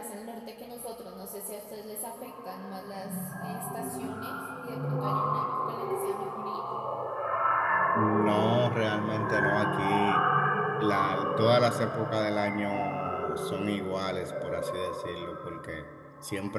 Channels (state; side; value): identical; both; correlation 1.00